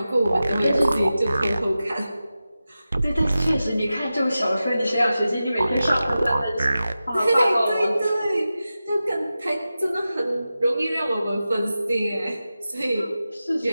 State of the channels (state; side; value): inverted; both; correlation -0.93